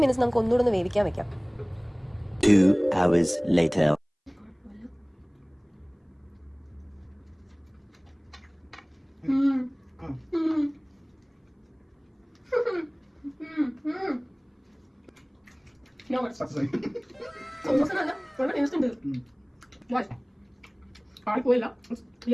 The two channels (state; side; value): identical; both; correlation 1.00